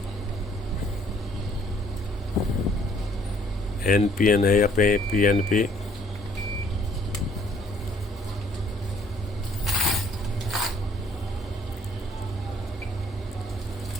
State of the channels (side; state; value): both; normal; correlation 0.62